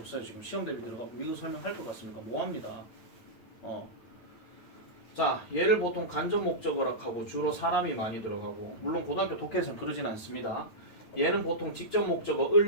지금 시험 대비 들어가고 이거 설명할 것 같습니까? 뭐합니다. 자, 얘를 보통 간접 목적어라고 하고 주로 사람이 많이 들어가고 물론 고등학교 독해에서는 그러진 않습니다. 얘는 보통 직접 목적어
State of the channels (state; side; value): late; right; 8.9 ms